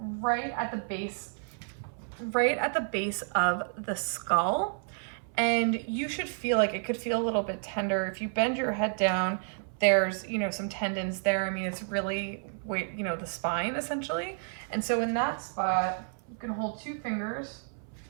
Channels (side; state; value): left; silent; 57 dB below the other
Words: right at the base of the skull. And you should feel like it could feel a little bit tender. If you bend your head down, there's, some tendons there. I mean, it's really, the spine essentially. And so in that spot, you can hold 2 fingers.